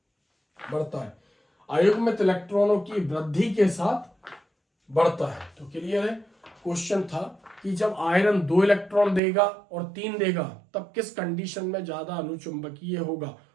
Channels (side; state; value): left; drops out; at 9.2 s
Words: बढ़ता है, अयुग्मित इलेक्ट्रॉनों की वृद्धि के साथ बढ़ता है। तो क्लियर है। क्वेश्चन था कि जब आयरन 2 इलेक्ट्रॉन देगा और 3 देगा तब किस कंडीशन में ज्यादा अनुचुंबकीय होगा